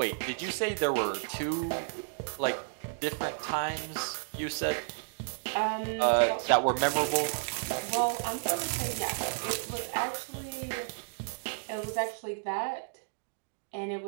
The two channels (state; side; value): silent; left; digital silence